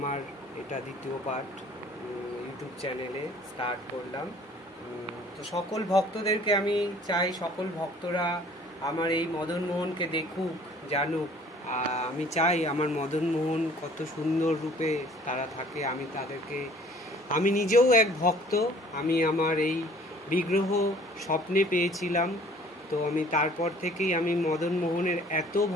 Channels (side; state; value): both; normal; correlation 0.53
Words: এটা দ্বিতীয় পার্ট ইউটিউব চ্যানেলে স্টার্ট করলাম। তো সকল ভক্তদেরকে আমি চাই, সকল ভক্তরা আমার এই মদন মোহনকে দেখুক, জানুক। আমি চাই আমার মদন মোহন কত সুন্দর রূপে তারা থাকে। আমি নিজেও এক ভক্ত। আমি আমার এই বিগ্রহ স্বপ্নে পেয়েছিলাম। তো আমি তারপর থেকেই আমি মদন মোহনের এত